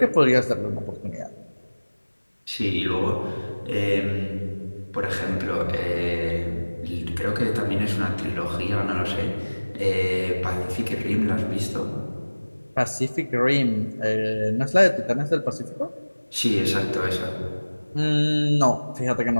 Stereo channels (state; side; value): inverted; both; correlation -1.00